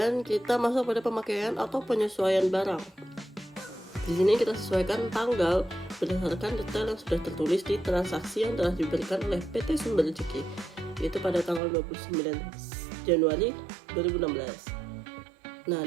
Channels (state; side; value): drops out; left; at 11.6 s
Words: kita masuk pada pemakaian atau penyesuaian barang. Di sini kita sesuaikan tanggal berdasarkan detail yang sudah tertulis di transaksi yang telah diberikan oleh PT Sumber Rezeki, yaitu pada tanggal 29 Januari 2016. Nah,